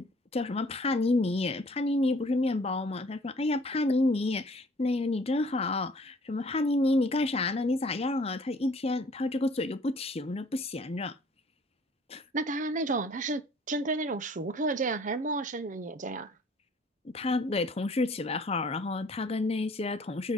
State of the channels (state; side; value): normal; both; correlation 0.55